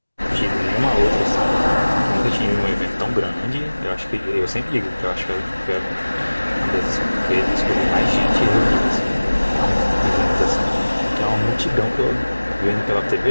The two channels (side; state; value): both; inverted; correlation -1.00